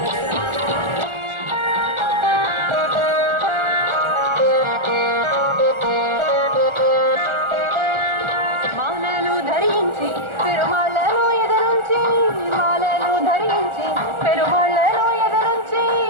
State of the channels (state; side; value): late; left; 1.4 ms